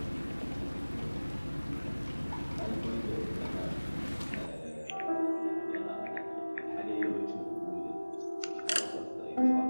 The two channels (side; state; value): both; inverted; correlation -1.00